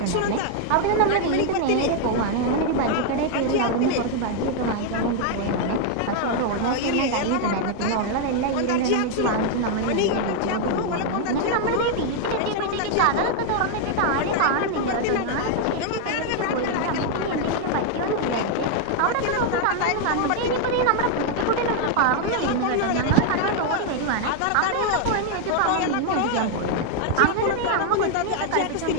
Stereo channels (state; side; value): different; both; correlation 0.00